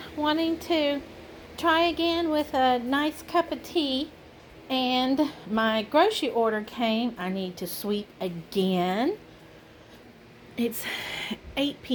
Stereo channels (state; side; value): identical; both; correlation 1.00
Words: wanting to try again with a nice cup of tea, and my grocery order came. I need to sweep again. It's 8